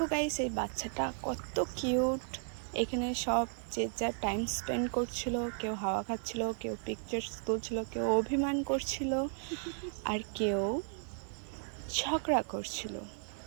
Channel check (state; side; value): silent; left; 55 dB below the other